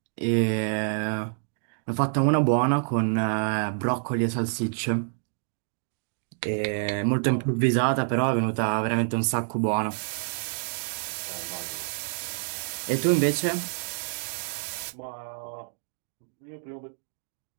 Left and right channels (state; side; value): silent; left; digital silence